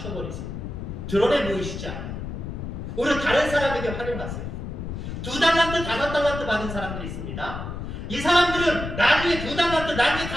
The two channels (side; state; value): left; noise; rumble, 7 dB below the sound